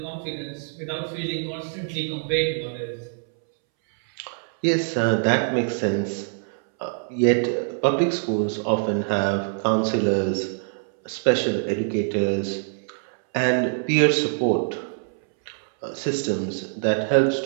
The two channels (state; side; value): silent; left; 62 dB below the other